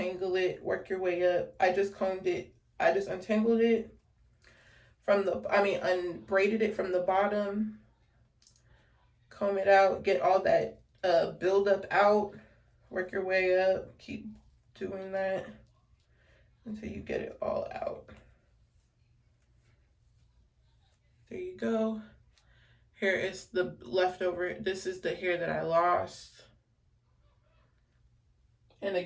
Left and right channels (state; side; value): identical; both; correlation 1.00